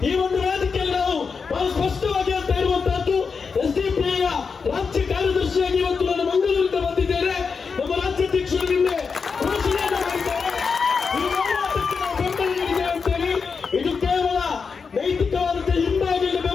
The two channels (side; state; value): right; quieter; 5.3 dB